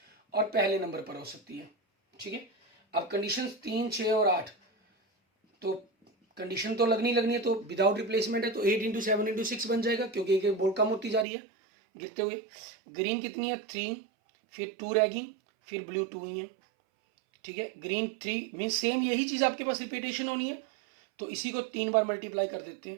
और पहले नंबर पर हो सकती है, ठीक है। अब कंडीशंस 3 6 और 8, तो कंडीशन तो लगनी है, तो विदाउट रिप्लेसमेंट है, तो 8 × 7 × 6 बन जाएगा, क्योंकि एक बॉल कम होती जा रही है गिरते हुए। ग्रीन कितनी है 3, फिर 2 रहेगी, फिर ब्लू 2 ही है, ठीक है, ग्रीन 3 मीन सेम यही चीज आपके पास रिपीटेशन होनी है, तो इसी को 3 बार मल्टीप्लाई कर देते हैं,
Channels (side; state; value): left; drops out; at 11.2 s